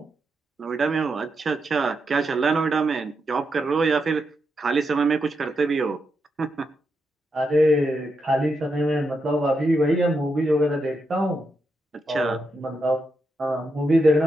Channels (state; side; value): normal; both; correlation 0.84